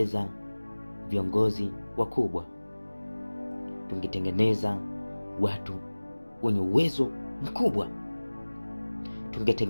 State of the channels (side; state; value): both; inverted; correlation -1.00